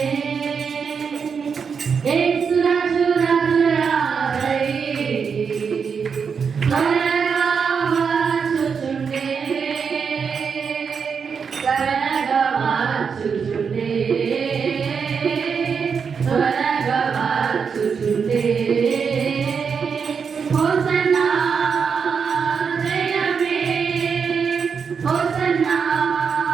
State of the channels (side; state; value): left; quieter; 6.1 dB